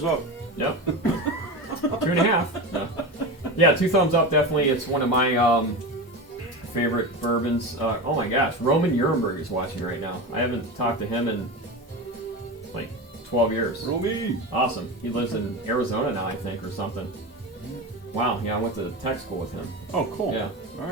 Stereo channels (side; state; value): both; normal; correlation 0.24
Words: up. Yep. 2.5. Yeah. Yeah, 2 thumbs up, definitely. It's one of my favorite bourbons. Oh my gosh, Roman Nuremberg is watching right now. I haven't talked to him in like 12 years. Romy. Awesome. He lives in Arizona now, I think, or something. Wow, yeah, I went to tech school with him. Oh, cool. Yeah. All